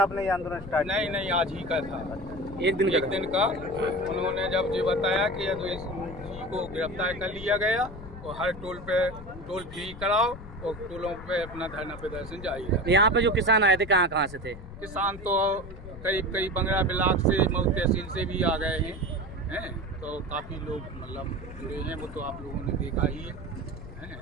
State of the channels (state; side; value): noise; left; rumble, 13 dB below the sound